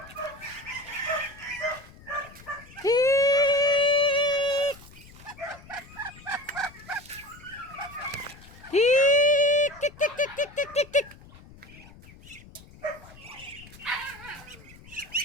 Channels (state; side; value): noise; left; rumble, 21 dB below the sound